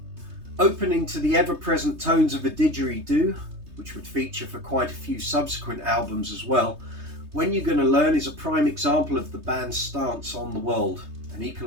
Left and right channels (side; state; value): left; late; 3.2 ms